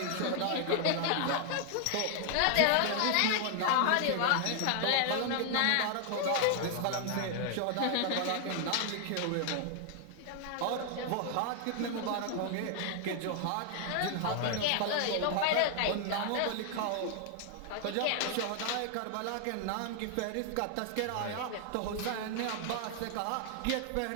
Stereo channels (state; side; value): different; both; correlation 0.00